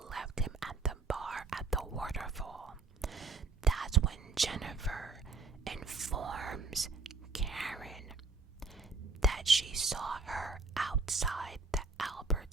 him at the bar at the waterfall. That's when Jennifer informs Karen that she saw her outside the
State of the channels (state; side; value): quieter; left; 4.0 dB